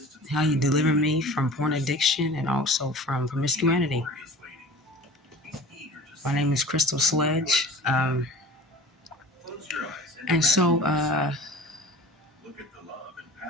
how he delivered me from porn addiction and also from promiscuity. My name is Crystal Sledge. And so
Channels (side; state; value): both; normal; correlation 0.42